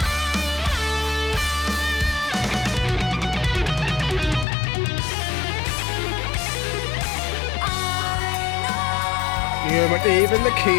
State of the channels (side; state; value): right; drops out; at 4.5 s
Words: Yeah, but even the key